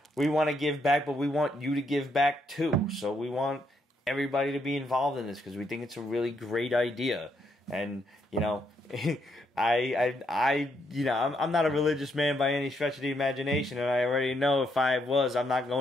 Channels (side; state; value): both; normal; correlation 0.76